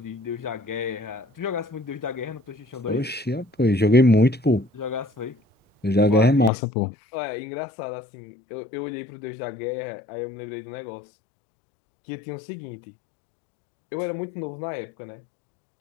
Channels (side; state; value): right; drops out; at 6.5 s